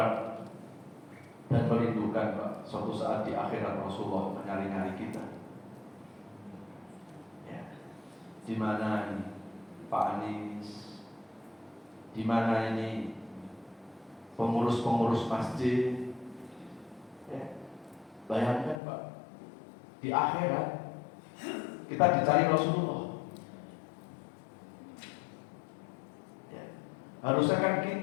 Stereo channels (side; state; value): right; drops out; at 18.8 s